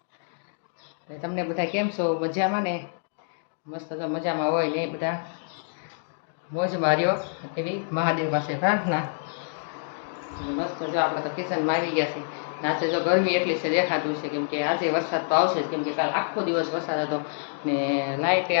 તમને બધા કેમ છો? મજામાં ને? મસ્ત તો મજામાં હોય ને બધા મોજ માર્યો એવી મહાદેવ પાસે પ્રાર્થના. મસ્ત જો આપણે તો કિચનમાં આવી ગયા છીએ. આજે જો ગરમી એટલી છે દેખાતું છે, કેમ કે આજે વરસાદ તો આવશે જ, કેમ કે કાલ આખો દિવસ વરસાદ હતો ને લાઇટે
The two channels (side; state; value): right; silent; digital silence